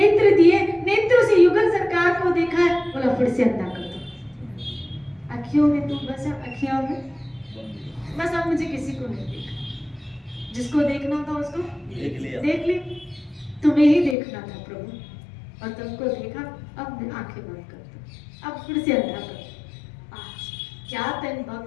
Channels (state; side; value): drops out; right; at 14.2 s